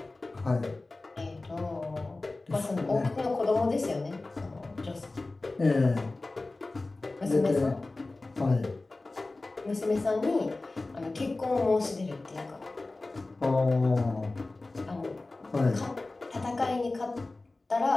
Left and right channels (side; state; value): right; quieter; 3.2 dB